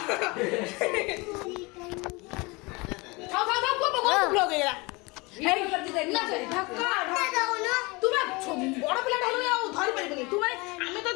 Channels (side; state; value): right; quieter; 25.8 dB